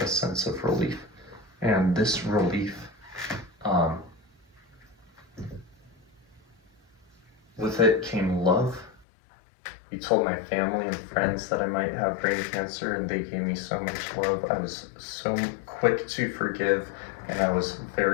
a sense of relief. And this relief with it came love. He told my family and friends that I might have brain cancer, and they gave me so much love. I was so quick to forgive, and I was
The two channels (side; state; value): right; drops out; at 9.1 s